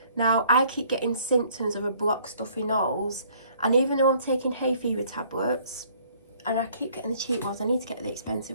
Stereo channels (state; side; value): inverted; both; correlation -0.60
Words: Now I keep getting symptoms of a blocked stuffy nose, and even though I'm taking hay fever tablets, and I keep getting the cheap ones, I need to get the